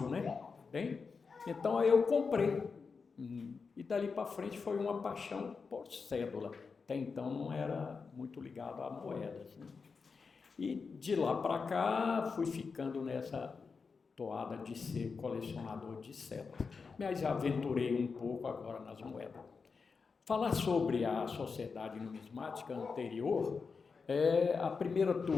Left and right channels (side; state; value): right; quieter; 5.0 dB